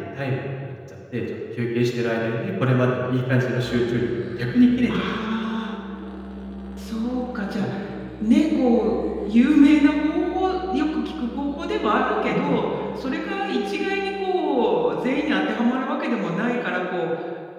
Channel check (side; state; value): both; identical; correlation 1.00